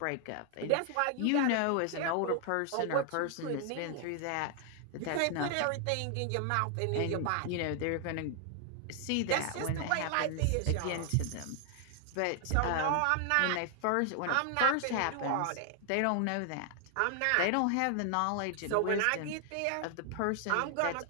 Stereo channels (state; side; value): different; both; correlation 0.00